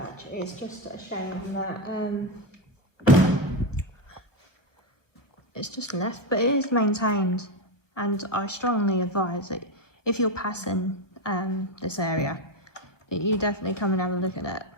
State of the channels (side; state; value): right; late; 1.3 ms